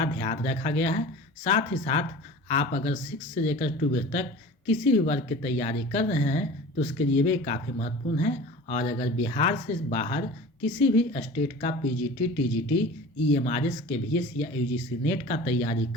ध्यान रखा गया है। साथ ही साथ आप अगर 6 से लेकर 12 तक किसी भी वर्ग की तैयारी कर रहे हैं तो उसके लिए भी काफ़ी महत्वपूर्ण है। और अगर बिहार से बाहर किसी भी स्टेट का पीजीटी, टीजीटी, ईएमआरएस, केवीएस या यूजीसी नेट का तैयारी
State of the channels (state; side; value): normal; both; correlation 0.39